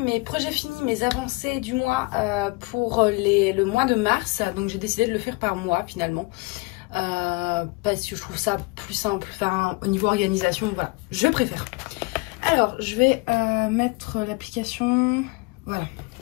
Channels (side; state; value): right; quieter; 26.4 dB